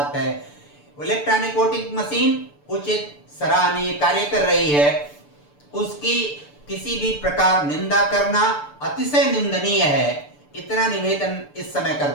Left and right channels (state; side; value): late; right; 6.9 ms